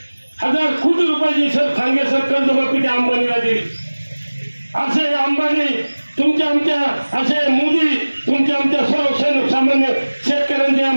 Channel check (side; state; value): both; inverted; correlation -1.00